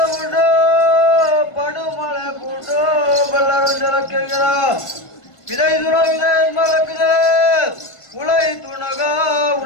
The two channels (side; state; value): right; late; 1.5 ms